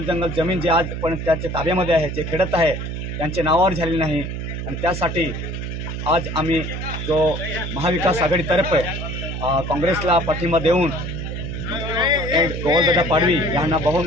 जमीन जे आज पण त्याच्या ताब्यामध्ये आहे, जे खेडत आहे त्यांचे नावावर झाले नाही आणि त्यासाठी आज आम्ही जो महाविकास आघाडीतर्फे काँग्रेसला पाठिंबा देऊन गोवालदादा पाडवी यांना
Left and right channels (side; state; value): right; noise; hum, 5 dB below the sound